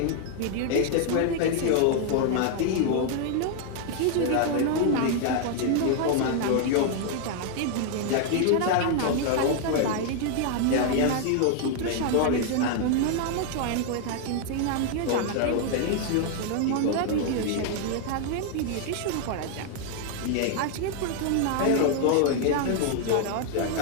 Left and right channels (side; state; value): both; different; correlation 0.00